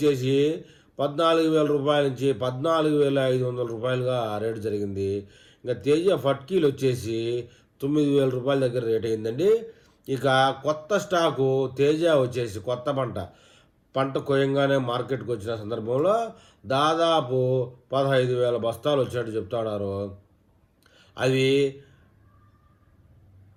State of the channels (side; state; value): both; identical; correlation 1.00